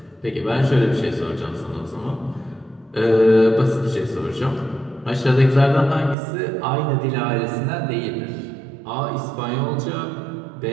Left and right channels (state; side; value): drops out; left; at 6.2 s